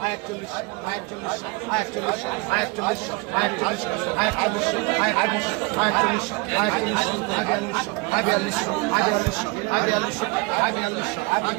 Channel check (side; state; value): left; quieter; 26.5 dB